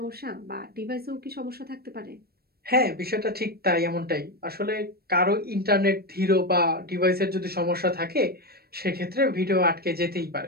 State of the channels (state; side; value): late; left; 0.45 ms